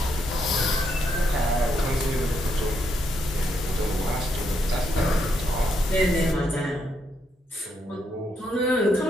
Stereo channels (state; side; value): normal; both; correlation 0.77